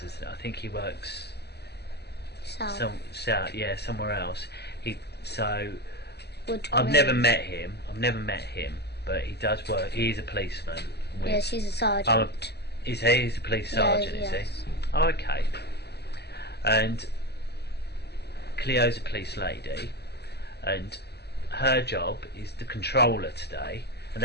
I think he works south, yeah, somewhere else. I've never met him, but he does work. He's a policeman. Yes, he's a sergeant. He's a police sergeant, is he? Oh, okay. And Cleo's a police lady, and her job is the controller today, and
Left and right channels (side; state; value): right; late; 0.48 ms